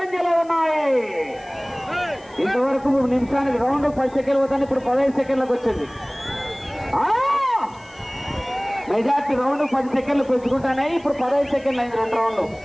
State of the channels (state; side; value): noise; left; hiss, 29 dB below the sound